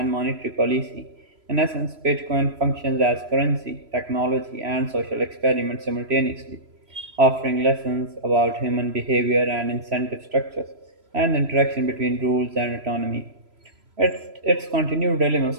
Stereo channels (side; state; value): left; late; 3.0 ms